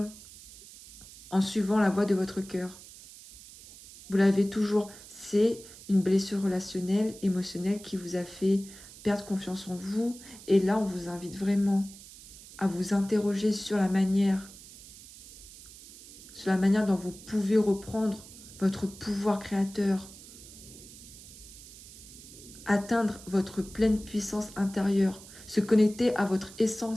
en suivant la voie de votre cœur. Vous l'avez toujours. C'est une blessure relationnelle, émotionnelle qui vous a fait perdre confiance en vous. Et là, on vous invite vraiment à vous interroger sur la manière dont vous pouvez reprendre votre pouvoir créateur, atteindre votre pleine puissance intérieure, se connecter à votre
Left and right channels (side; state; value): right; noise; hiss, 18 dB below the sound